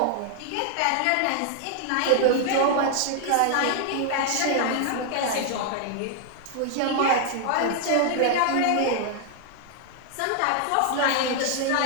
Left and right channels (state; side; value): different; both; correlation 0.00